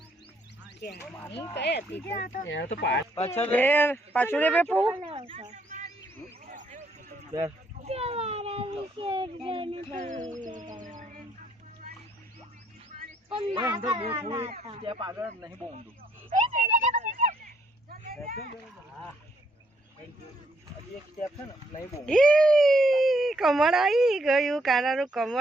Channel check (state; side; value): normal; both; correlation 0.71